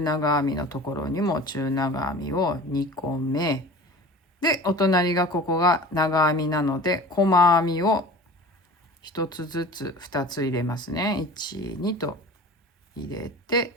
長編みのところにも中長編みを2個目で、お隣がここが長編みなので、細編みを1つずつ2つ入れますね。1、2と入れ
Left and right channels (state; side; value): normal; both; correlation 0.39